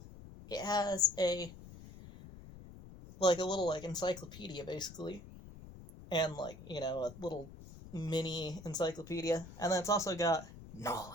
It has a little encyclopedia basically, and a little mini encyclopedia, and then it's also got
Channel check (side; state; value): left; noise; rumble, 16 dB below the sound